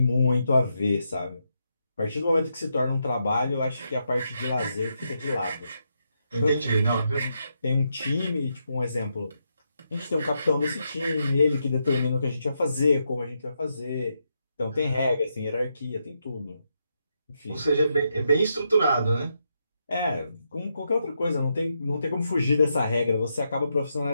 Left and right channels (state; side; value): inverted; both; correlation -0.82